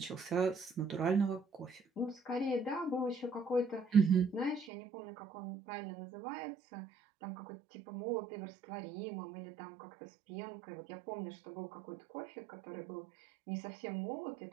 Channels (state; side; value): drops out; left; at 4.7 s